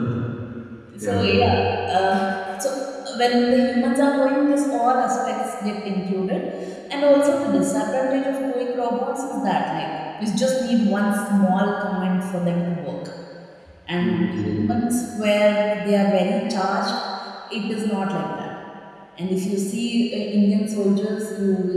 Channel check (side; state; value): both; identical; correlation 1.00